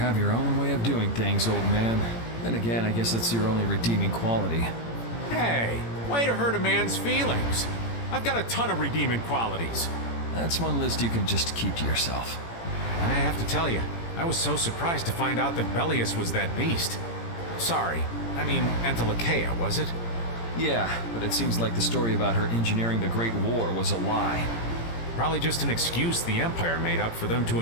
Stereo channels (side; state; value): right; late; 17 ms